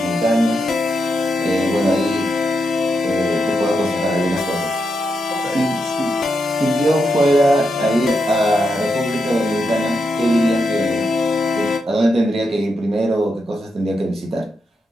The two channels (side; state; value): both; normal; correlation 0.84